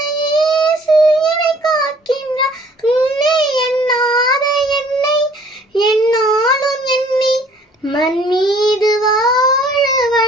இயேசு என்னை காக்கின்றான். உன்னை எண்ணாத என்னை என்னாலும் எண்ணி மண் மீது வாழ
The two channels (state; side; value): normal; both; correlation 0.56